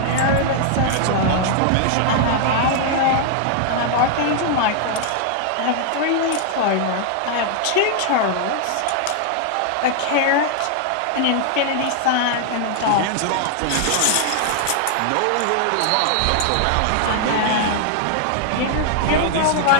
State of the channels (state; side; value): different; both; correlation 0.00